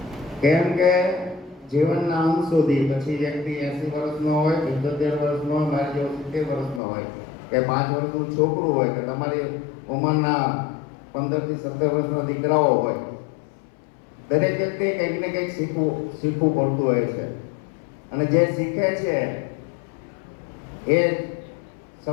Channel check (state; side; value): drops out; right; at 6.8 s